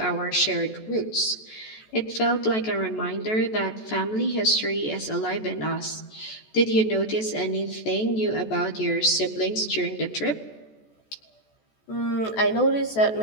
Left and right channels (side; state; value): right; late; 14 ms